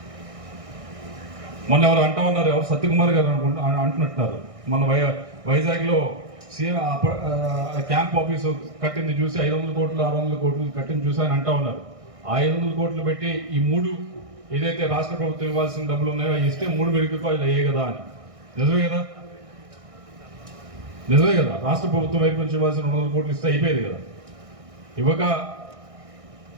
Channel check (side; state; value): left; late; 1.6 ms